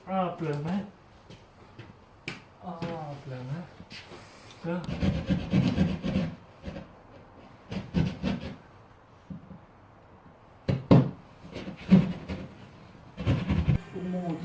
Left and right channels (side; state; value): both; identical; correlation 1.00